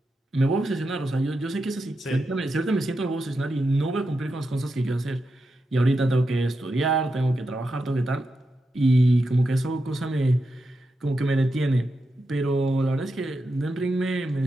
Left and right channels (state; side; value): normal; both; correlation 0.87